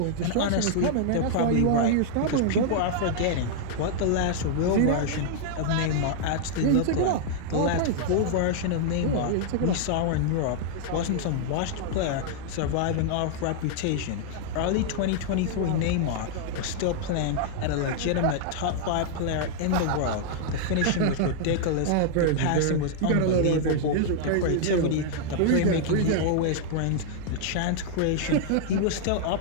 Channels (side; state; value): both; different; correlation -0.01